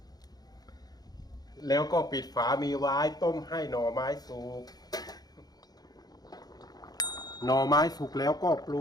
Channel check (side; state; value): right; late; 0.19 ms